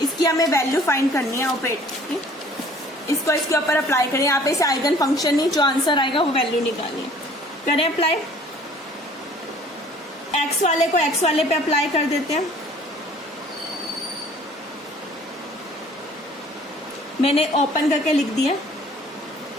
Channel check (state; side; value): normal; both; correlation 0.53